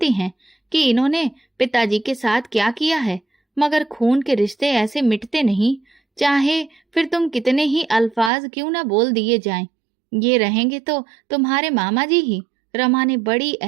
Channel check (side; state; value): left; drops out; at 8.3 s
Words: हैं कि इन्होंने पिताजी के साथ क्या किया है। मगर खून के रिश्ते ऐसे मिटते नहीं, चाहे फिर तुम कितने ही अल्फाज क्यों ना बोल दिए जाएं। ये रहेंगे तो तुम्हारे मामा जी ही। रमा ने बड़ी